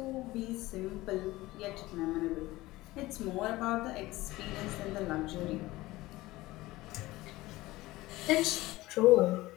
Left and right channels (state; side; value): quieter; right; 18.7 dB